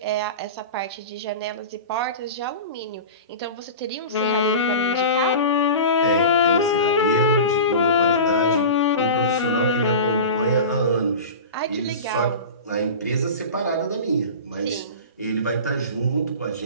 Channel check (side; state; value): both; inverted; correlation -0.30